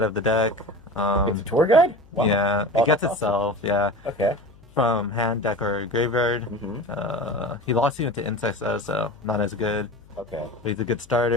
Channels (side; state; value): left; noise; hum, 25 dB below the sound